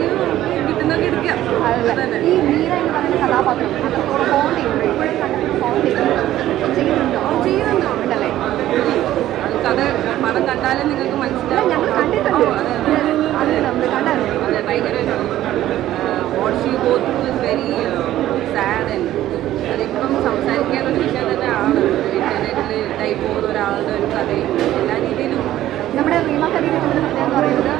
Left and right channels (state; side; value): quieter; left; 13.6 dB